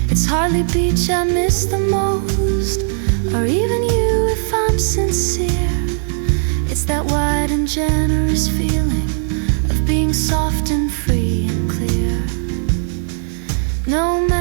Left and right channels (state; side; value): silent; left; digital silence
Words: It's hardly beach I miss the most, or even you if I'm sincere. It's that wide and generous feeling of being soft and free and clear. No